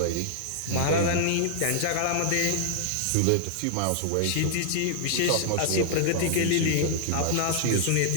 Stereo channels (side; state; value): both; different; correlation -0.01